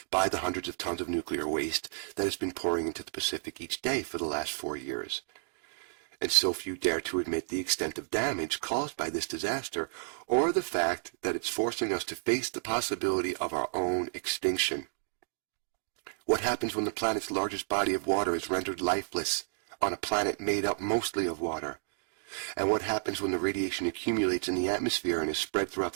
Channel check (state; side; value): silent; left; digital silence